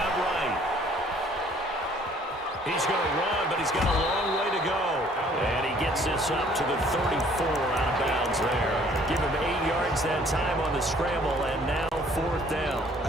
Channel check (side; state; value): both; normal; correlation 0.58